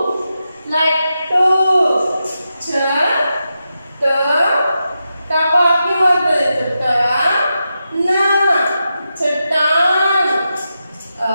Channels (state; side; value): inverted; both; correlation -0.88